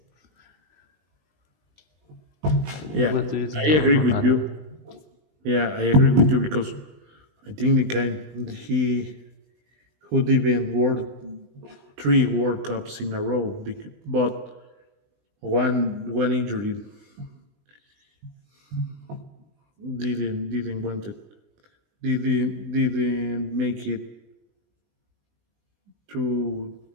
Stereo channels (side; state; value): left; late; 20 ms